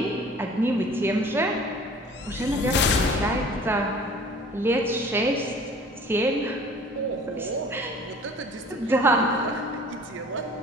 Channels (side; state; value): both; normal; correlation 0.48